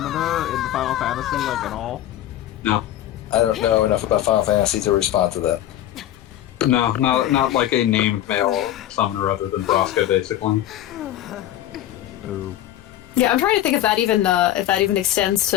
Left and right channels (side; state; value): right; quieter; 12.6 dB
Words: in the Final Fantasy, like at all? No. I don't know enough about Final Fantasy to respond to that. No, not like a named male summoner other than Braska, basically. Ooh. Yeah, I'm trying to think if that even extends